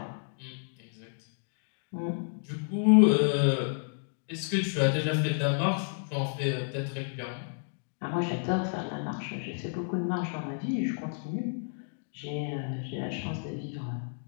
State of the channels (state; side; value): silent; right; digital silence